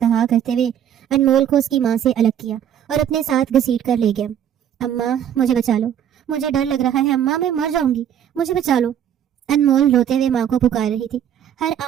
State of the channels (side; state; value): left; quieter; 9.6 dB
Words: کرتے ہوئے انمول کو اس کی ماں سے الگ کیا اور اپنے ساتھ گھسیٹ کر لے گیا۔ اماں مجھے بچا لو، مجھے ڈر لگ رہا ہے اماں، میں مر جاؤں گی، مجھے بچا لو۔ انمول روتے ہوئے ماں کو پکار رہی تھی۔ ہر